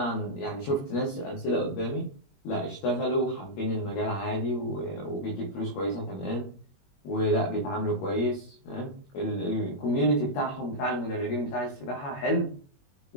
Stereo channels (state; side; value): late; right; 21 ms